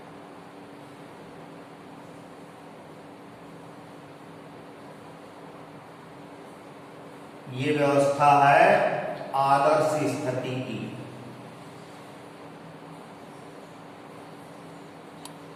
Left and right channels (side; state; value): both; identical; correlation 1.00